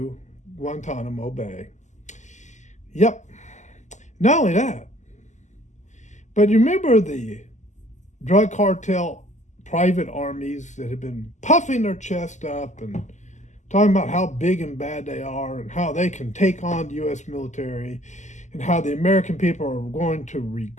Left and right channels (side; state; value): right; late; 0.34 ms